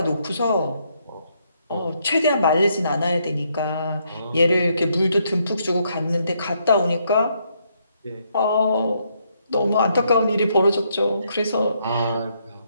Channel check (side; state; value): both; inverted; correlation -0.74